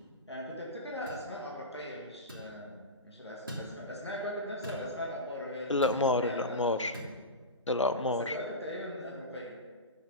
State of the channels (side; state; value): both; normal; correlation -0.18